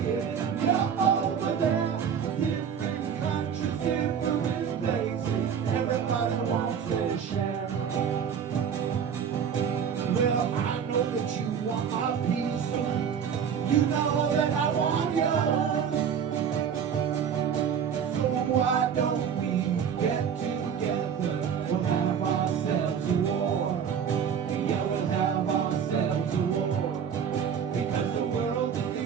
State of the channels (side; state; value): left; quieter; 7.6 dB